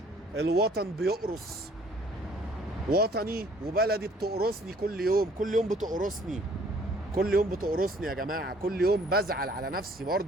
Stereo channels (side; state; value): both; normal; correlation 0.58